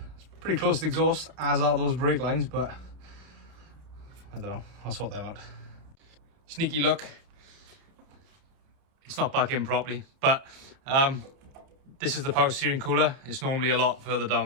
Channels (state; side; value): late; left; 29 ms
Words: It's pretty close to the exhaust, as are those brake lines, but I don't know, I'll sort them out. Sneaky look. It's not back in properly, but this is the power steering cooler. It's normally a lot further down